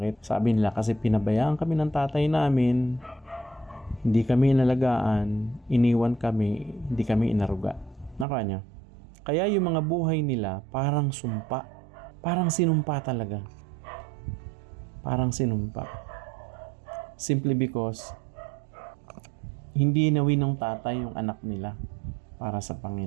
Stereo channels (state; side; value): drops out; left; at 8.2 s